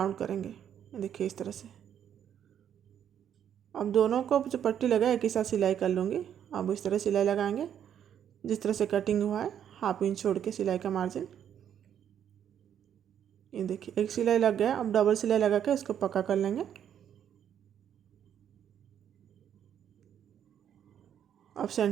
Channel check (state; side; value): quieter; left; 9.4 dB